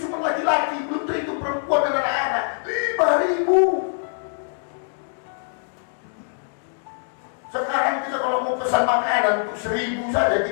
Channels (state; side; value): silent; right; digital silence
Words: cuma laki-laki, belum terhitung perempuan dan anak-anak. 5.000. Sekarang kita kalau mau pesan makanan untuk 1.000 saja,